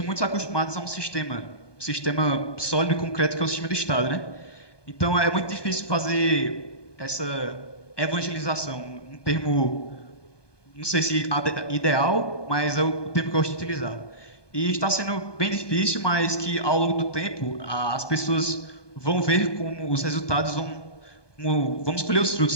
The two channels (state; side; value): late; right; 1.2 ms